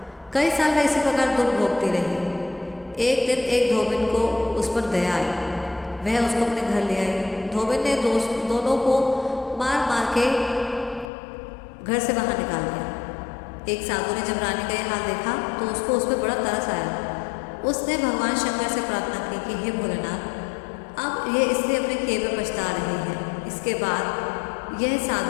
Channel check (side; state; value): right; drops out; at 11.1 s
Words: कई साल में इसी प्रकार दुख भोगती रही। एक दिन एक धोबिन को उस पर दया आई, वह उसको अपने घर ले आई। धोबिन ने दोनों को मार मार के घर से बाहर निकाल दिया। एक साधु ने जब रानी का यह हाल देखा तो उसको उस पर बड़ा तरस आया। उसने भगवान शंकर से प्रार्थना की कि हे भोलेनाथ, अब ये इसलिए अपने किए में पछता रही है। इसके बाद